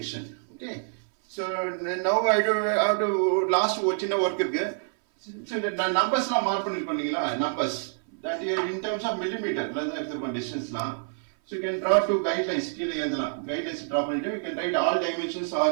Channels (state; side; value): silent; left; 58 dB below the other